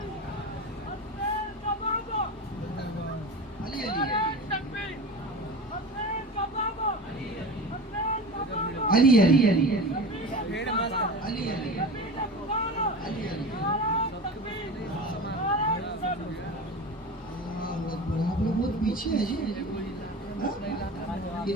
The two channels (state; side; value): normal; both; correlation 0.31